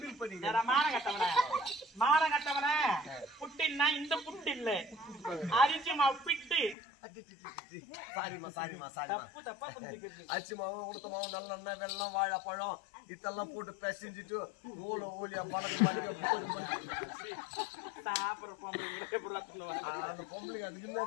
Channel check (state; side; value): drops out; right; at 6.8 s